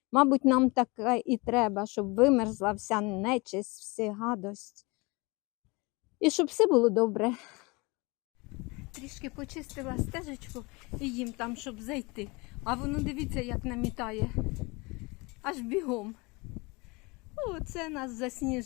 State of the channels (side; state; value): right; quieter; 26.2 dB